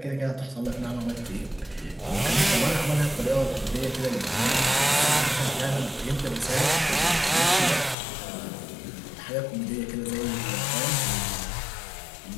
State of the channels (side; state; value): right; drops out; at 8.0 s